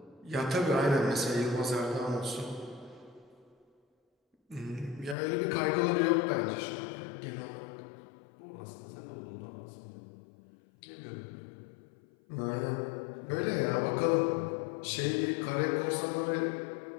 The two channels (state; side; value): drops out; right; at 5.2 s